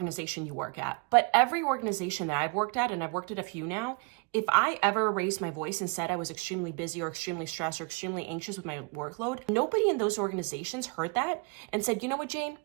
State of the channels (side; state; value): left; quieter; 32.1 dB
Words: you work at, but every organization that I've worked at, and I've worked at a few now, if I ever raised my voice and said I was extremely busy or extremely stressed or extremely anxious with my workload, nobody in those organizations heard that and said, you know what, Jane,